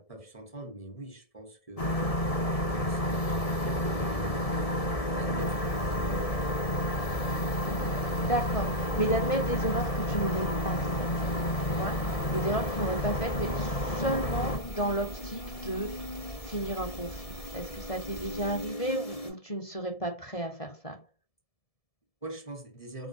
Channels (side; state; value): right; late; 1.7 ms